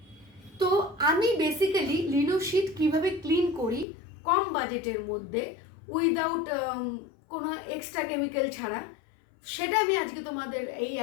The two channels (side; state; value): right; drops out; at 3.9 s